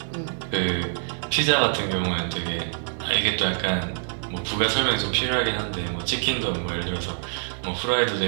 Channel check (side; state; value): left; silent; 62 dB below the other